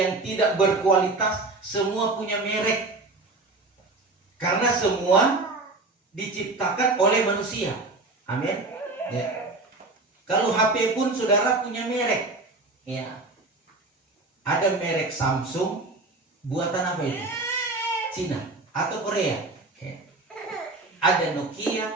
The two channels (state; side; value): quieter; left; 3.3 dB